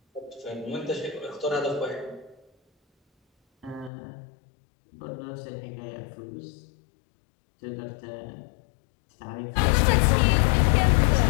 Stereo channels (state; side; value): drops out; right; at 3.9 s